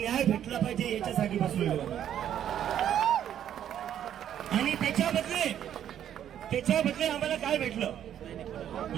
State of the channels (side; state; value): left; quieter; 10.2 dB